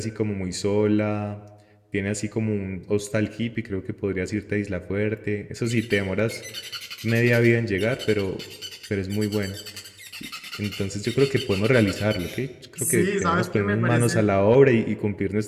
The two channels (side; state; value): both; identical; correlation 1.00